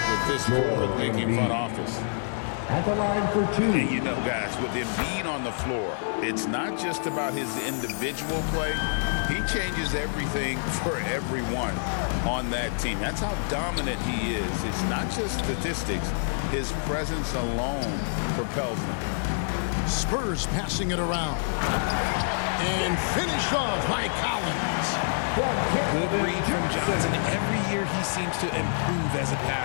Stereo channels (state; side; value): silent; right; digital silence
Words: with this forward-thinking front office. At the line for 2. And you know, guys, with Embiid on the floor, it's not just about his individual play. He changes everything for everyone on that team. That's how dominant he is. It's not just statistics. His presence alone propels them. Spurs passing it around. And finished off by Collins. Good read from Johnson. Every year he seems to improve as a